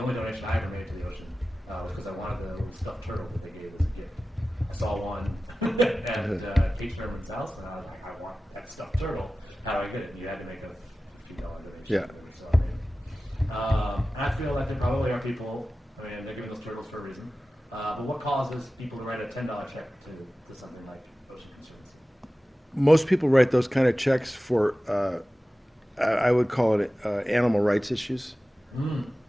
donation I ever made to the ocean was because I wanted the little stuffed turtle that they gave as a gift. I saw one at Kate Sherman's house, and I was like, I want that stuffed turtle. How do I get it? And you had to make a $50 donation or whatever, so I made one. And I feel like there probably are people, I mean, they're giving those turtles for a reason. But what causes people to write a $10 check to something like Ocean Conservancy? Most people write those kind of checks for, I would call it animal rights issues.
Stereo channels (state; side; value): normal; both; correlation 0.95